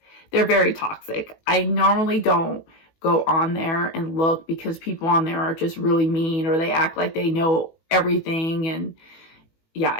they're very toxic. I normally don't go on there and look because people on there are just really mean, or they act like they know everything. And yeah,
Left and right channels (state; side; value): late; right; 18 ms